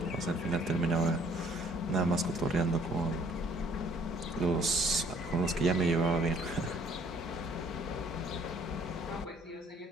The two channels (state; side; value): normal; both; correlation 0.59